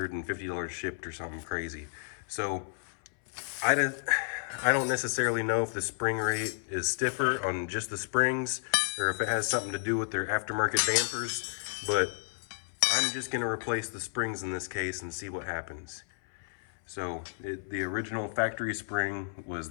shipped or something crazy. So I don't necessarily know if the spring rate is stiffer on just the springs or if it has something to do with their aftermarket dampers, but I'm just gonna replace the springs in this case and see what happens. So the original factory spring was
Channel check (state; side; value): silent; right; 57 dB below the other